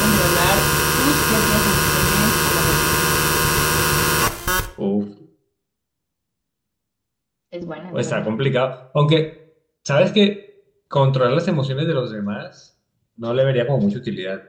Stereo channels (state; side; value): identical; both; correlation 1.00